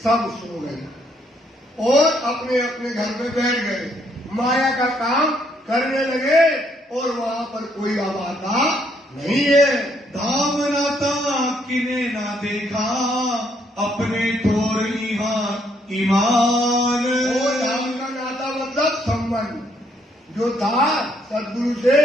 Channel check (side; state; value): both; normal; correlation 0.71